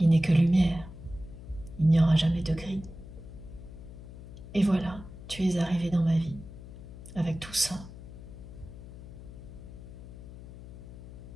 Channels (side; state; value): left; noise; hum, 14 dB below the sound